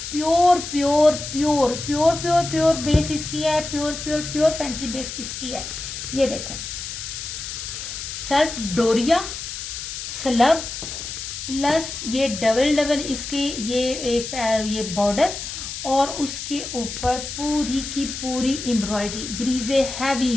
pure pure pure pure pure pure base इसकी है, pure pure pure fancy base इसकी है। ये देखें, सेल्फ डोरिया स्लब प्लस ये डबल इसकी ये एक ये बॉर्डर, और उसके ऊपर पूरी की पूरी एम्ब्रॉयडरी, ब्रीजे हैवी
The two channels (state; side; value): noise; left; hiss, 7 dB below the sound